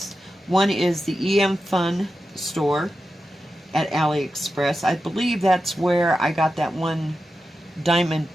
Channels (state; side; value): normal; both; correlation 0.91